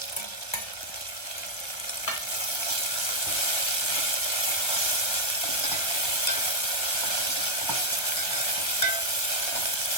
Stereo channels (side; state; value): right; late; 1.4 ms